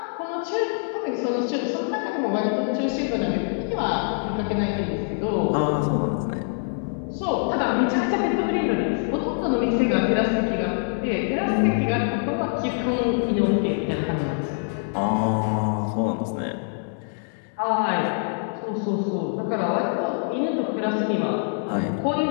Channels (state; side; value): silent; right; 62 dB below the other